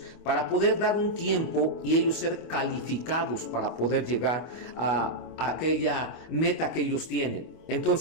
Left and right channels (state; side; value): late; right; 25 ms